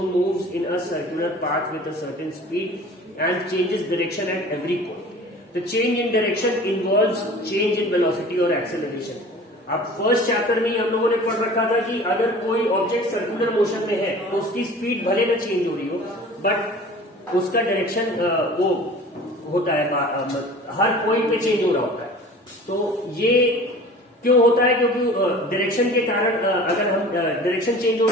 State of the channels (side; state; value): both; normal; correlation 0.43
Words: moves in a circular path with a certain speed and changes direction at every point. The change in direction involves change in velocity और acceleration. अब first chapter में ही हम लोगों ने पढ़ रखा था कि अगर कोई ऑब्जेक्ट सर्कुलर मोशन में है तो उसकी स्पीड भले ना चेंज हो रही हो, बट उसका डायरेक्शन वो होता है, हर पॉइंट पे चेंज हो रहा होता है। तो ये क्यों होता है? क्योंकि डायरेक्शन के कारण अगर हम डायरेक्शन चेंज हो